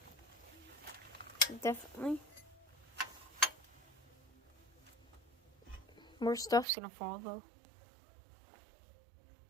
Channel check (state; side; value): drops out; left; at 6.7 s